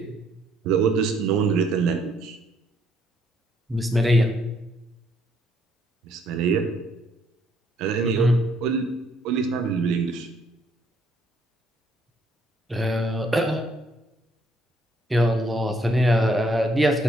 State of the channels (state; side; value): normal; both; correlation 0.68